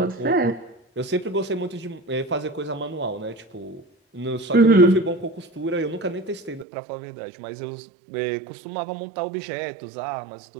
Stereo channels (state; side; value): drops out; left; at 6.7 s